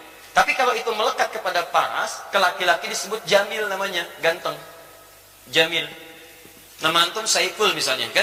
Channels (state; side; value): identical; both; correlation 1.00